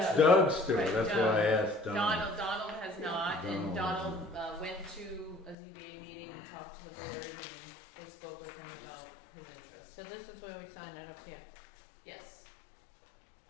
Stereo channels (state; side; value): drops out; right; at 5.6 s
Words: Doug's store, Right, that's Doug. why I asked Donald. Donald has not, and Donald. Donald went to a ZBA meeting and talked to the board, and they spoke with him about his interest. So this is where we sign it up here. Yes.